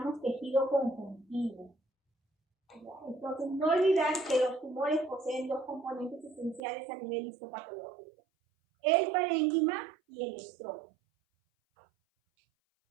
tejido conjuntivo. Entonces, no olvidar que los tumores poseen dos componentes esenciales a nivel histopatológico: el parénquima y el estroma.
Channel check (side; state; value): left; drops out; at 6.6 s